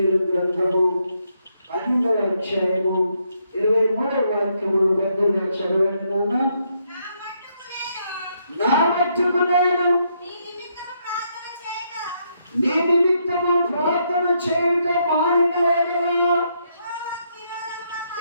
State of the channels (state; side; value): inverted; both; correlation -0.76